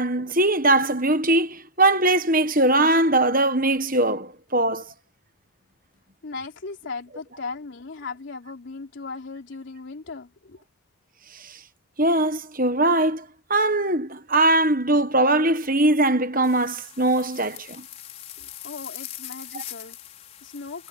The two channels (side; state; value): both; normal; correlation -0.04